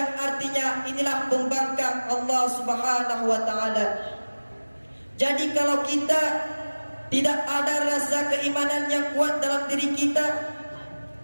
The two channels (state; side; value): inverted; both; correlation -1.00